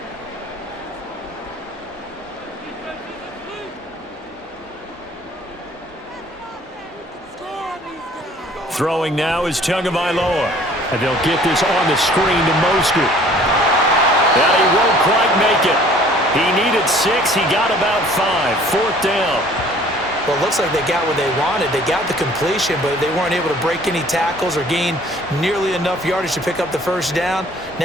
Throwing now is Tagovailoa. And they'll get this on the screen to Mostert. And he won't quite make it. He needed 6. He got about 5. 4th down. Well, it looks like they got what they wanted. They got the completion, but they weren't able to break any tackles or gain nearly enough yardage to pick up the first down.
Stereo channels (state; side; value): normal; both; correlation 0.54